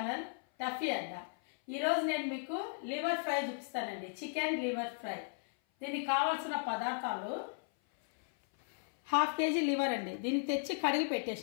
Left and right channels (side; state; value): right; silent; 54 dB below the other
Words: Tuffy అడ్డ. ఈరోజు నేను మీకు లివర్ ఫ్రై చూపిస్తానండి. Chicken liver fry. దీనికి కావాల్సిన పదార్థాలు ½ కేజీ లివర్ అండి. దీన్ని తెచ్చి కడిగి